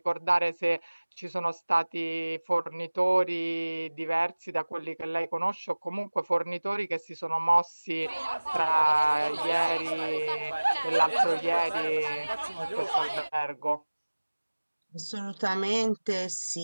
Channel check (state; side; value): inverted; both; correlation -1.00